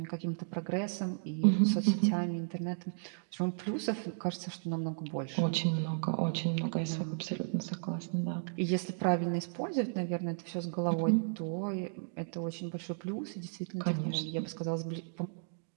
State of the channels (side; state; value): left; silent; digital silence